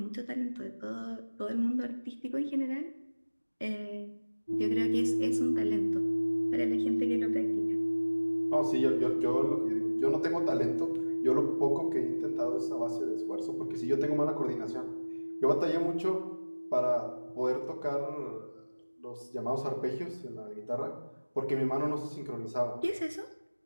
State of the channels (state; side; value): inverted; both; correlation -1.00